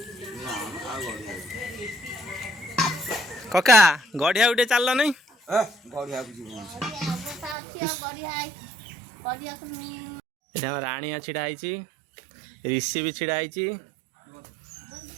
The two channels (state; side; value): drops out; left; at 7.6 s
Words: कका गढ़िया उठे चल नहीं राणिया छिड़ाई, ऋषि भी छिड़ाई,